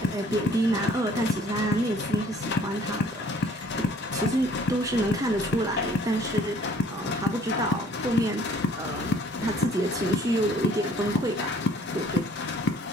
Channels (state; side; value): normal; both; correlation 0.56